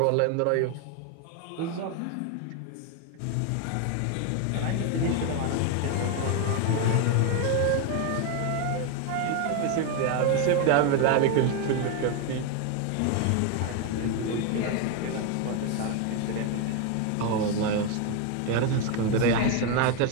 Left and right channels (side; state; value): both; different; correlation 0.01